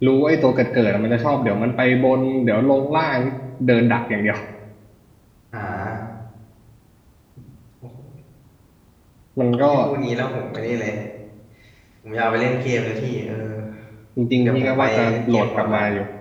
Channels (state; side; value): identical; both; correlation 1.00